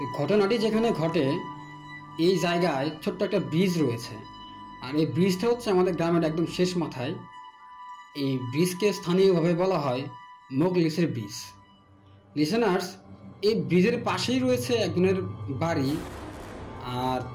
ঘটনাটি যেখানে ঘটে, এই জায়গায় ছোট্ট একটা ব্রিজ রয়েছে। আর এই ব্রিজটা হচ্ছে আমাদের গ্রামের একদম শেষ মাথায়। এই ব্রিজকে স্থানীয়ভাবে বলা হয় মোগলিসের ব্রিজ। লিসেনার্স, এই ব্রিজের পাশেই রয়েছে একজনের বাড়ি, আর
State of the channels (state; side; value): identical; both; correlation 1.00